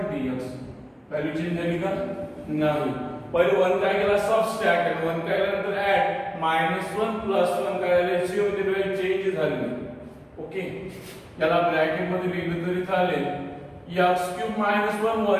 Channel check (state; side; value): identical; both; correlation 1.00